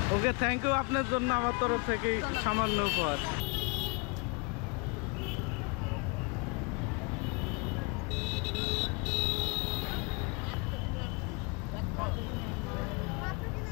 ওকে, থ্যাংক ইউ। আপনার জন্য আমার তরফ থেকে সামান্য উপহার।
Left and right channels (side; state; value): right; quieter; 30.6 dB